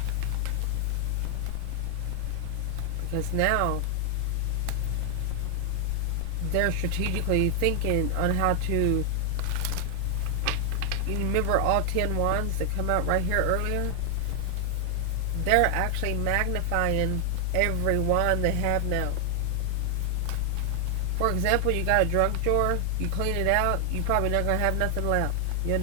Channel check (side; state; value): both; different; correlation 0.00